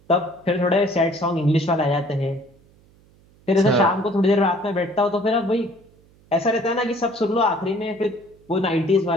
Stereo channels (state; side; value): noise; right; hum, 30 dB below the sound